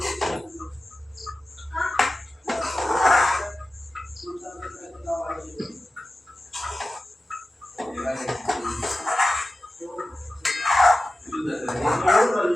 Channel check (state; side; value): normal; both; correlation 0.94